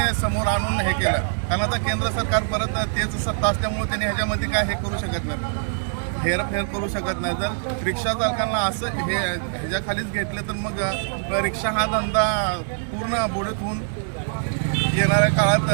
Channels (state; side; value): silent; left; digital silence